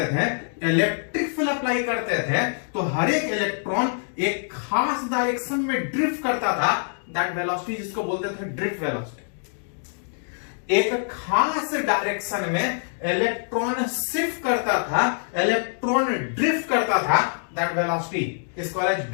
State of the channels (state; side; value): silent; right; digital silence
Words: थे, इलेक्ट्रिक फील्ड अप्लाई करते थे तो हर एक इलेक्ट्रॉन एक खास डायरेक्शन में ड्रिफ्ट करता था। दैट वेलोसिटी जिसको बोलते थे ड्रिफ्ट वेलोसिटी। एक खास डायरेक्शन में इलेक्ट्रॉन शिफ्ट करता था, इलेक्ट्रॉन ड्रिफ्ट करता था। दैट वेलोसिटी इसको